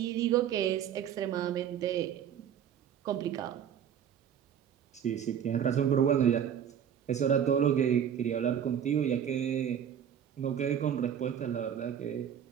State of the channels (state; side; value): quieter; left; 8.9 dB